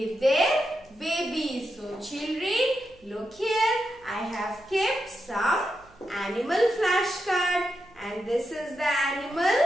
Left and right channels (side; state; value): right; noise; hum, 28 dB below the sound